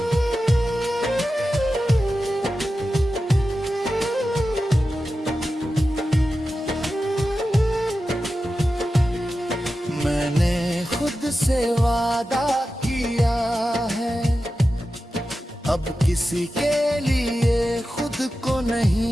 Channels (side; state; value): both; normal; correlation 0.92